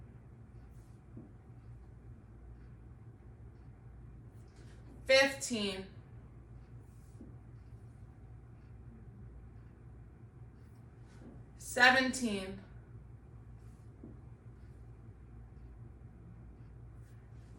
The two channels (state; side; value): identical; both; correlation 1.00